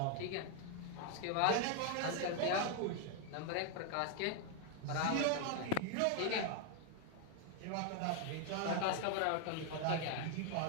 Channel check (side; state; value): both; different; correlation 0.01